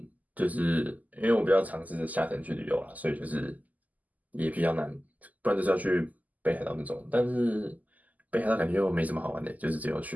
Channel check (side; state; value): left; late; 0.079 ms